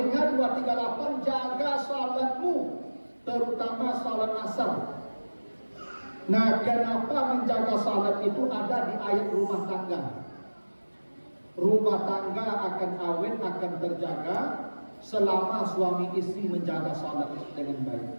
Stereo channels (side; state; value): both; inverted; correlation -1.00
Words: 238 jaga salatmu, terutama salat asar. Nah, kenapa menjaga salat itu ada di ayat rumah tangga? Rumah tangga akan awet, akan terjaga selama suami istri menjaga salat dengan baik.